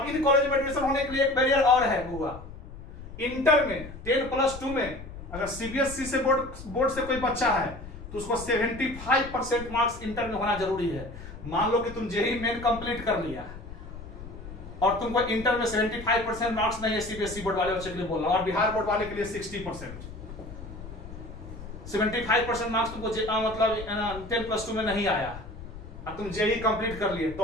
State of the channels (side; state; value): left; noise; rumble, 13 dB below the sound